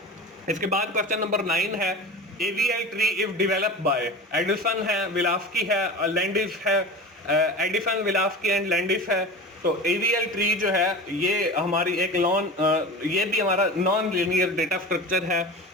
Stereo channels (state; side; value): normal; both; correlation 0.32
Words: इसके बाद क्वेश्चन नंबर 9 है AVL tree if developed by Edison है, विलास्की है, लैंडिस है, एडिसन, विलास्की एंड लैंडिस है। तो AVL ट्री जो है ये हमारी एक ये भी हमारा नॉन लीनियर डेटा स्ट्रक्चर है।